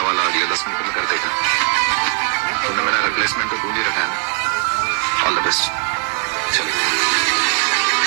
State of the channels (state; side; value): quieter; left; 37.5 dB